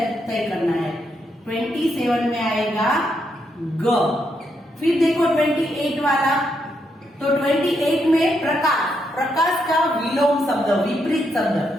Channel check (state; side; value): normal; both; correlation 0.79